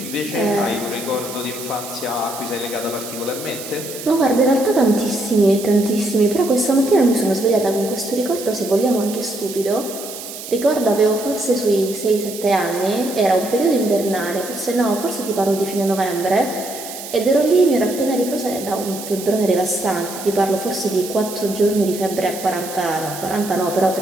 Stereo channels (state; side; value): noise; right; hiss, 11 dB below the sound